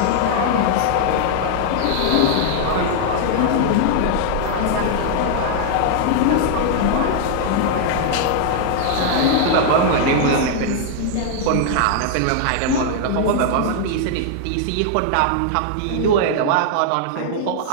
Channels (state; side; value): different; both; correlation -0.01